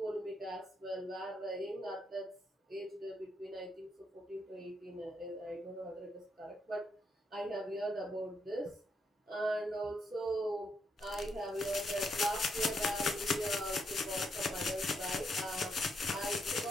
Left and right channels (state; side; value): normal; both; correlation 0.78